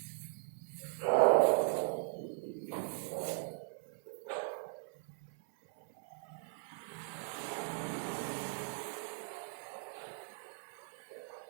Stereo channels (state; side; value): silent; left; 52 dB below the other